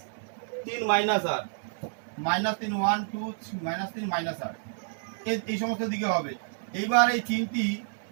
-8, -3 1 2 -3 -8, এই সমস্ত দিকে হবে। এইবার এই তিনটি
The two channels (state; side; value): silent; left; 58 dB below the other